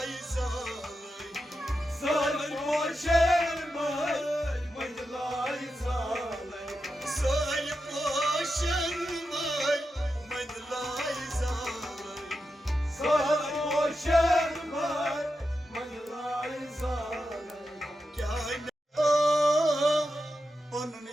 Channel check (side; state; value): both; normal; correlation 0.88